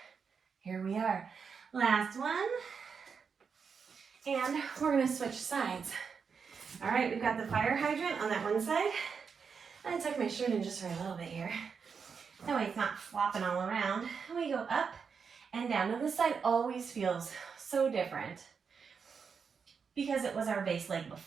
Here we are. Last one. And we're gonna switch sides. All right, we've got the fire hydrant on that one side. I'm gonna tuck my shirt in just for a little bit here. That way it's not flopping all around. And we go up and down. Now this side always feels so different because it was our base leg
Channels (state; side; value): quieter; left; 6.0 dB